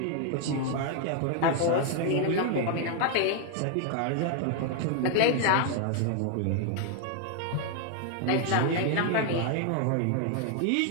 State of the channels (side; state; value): both; different; correlation 0.00